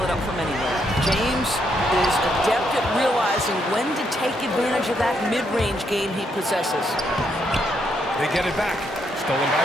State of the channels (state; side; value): normal; both; correlation 0.76